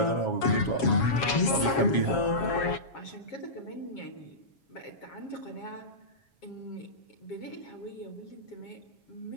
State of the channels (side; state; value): right; late; 7.3 ms